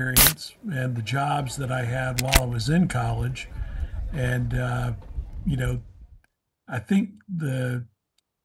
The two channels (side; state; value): both; identical; correlation 1.00